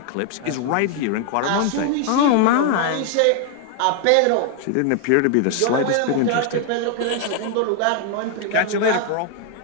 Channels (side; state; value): both; different; correlation 0.00